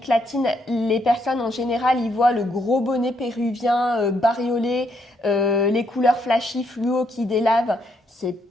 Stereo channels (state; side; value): normal; both; correlation 0.75